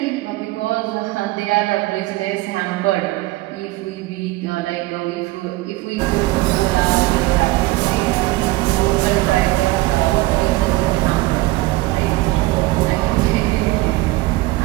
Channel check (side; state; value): left; quieter; 20.0 dB